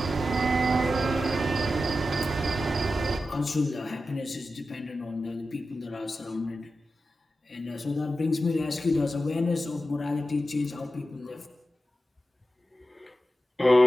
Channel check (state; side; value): normal; both; correlation 0.92